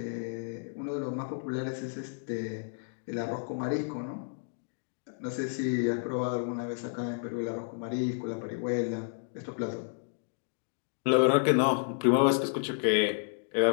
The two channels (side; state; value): right; silent; digital silence